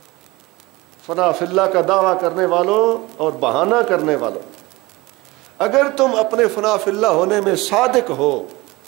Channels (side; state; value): left; quieter; 21.5 dB